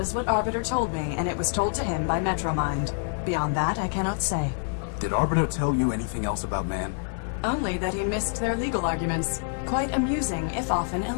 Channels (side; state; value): right; silent; digital silence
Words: is what Arbiter told me, and it was told to him by Metromind. Beyond that, I cannot say. Did Arbiter tell you anything else about man? Only that he missed their legal arguments. Quite amusing, if often